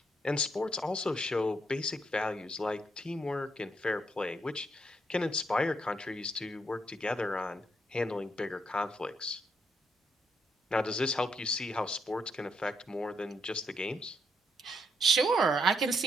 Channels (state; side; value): normal; both; correlation 0.76